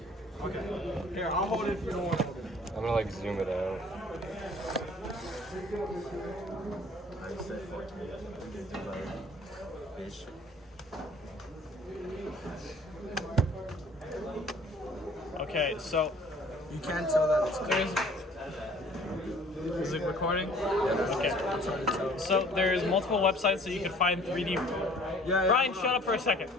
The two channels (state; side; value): normal; both; correlation 0.52